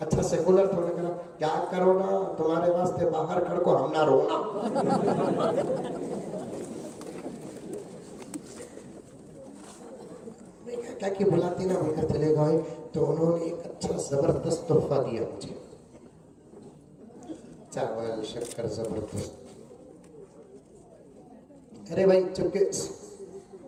अच्छा सेकुलर था, उन्होंने कहा क्या कोरोना तुम्हारे वास्ते बाहर खड़ को हम ना रोना। क्या कि बुलाती ना होकर चले गए, तो उन्होंने एक अच्छा जबरदस्त तोहफा दिया मुझे, चावल शक्कर जबरदस्त। अरे भाई चुपके,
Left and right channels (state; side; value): identical; both; correlation 1.00